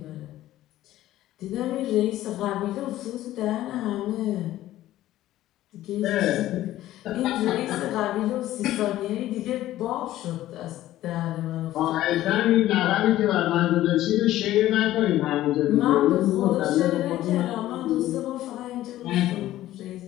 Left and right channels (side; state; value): right; quieter; 14.4 dB